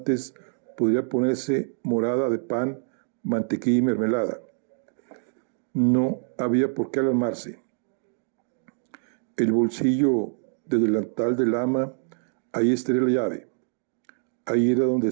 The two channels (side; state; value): left; silent; 55 dB below the other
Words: podría ponerse morada de pan, mantequilla y mermelada. No había por qué alarmarse. El bolsillo del delantal del ama, ahí estaría la llave. Ahí era donde